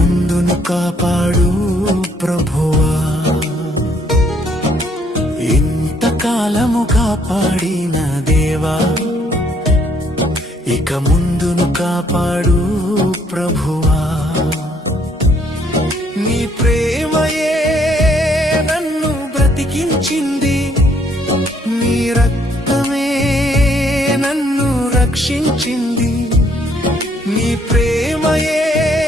కాపాడు ప్రభువా. ఇంతకాలము కాపాడిన దేవా, ఇక ముందును కాపాడు ప్రభువా. నీ ప్రేమయే నన్ను బ్రతికించింది, నీ రక్తమే నన్ను రక్షించింది. నీ ప్రేమయే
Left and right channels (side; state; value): both; normal; correlation 0.67